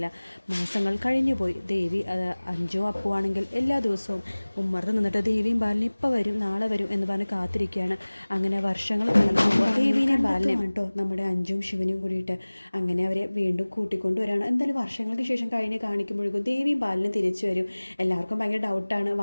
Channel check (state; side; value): inverted; both; correlation -1.00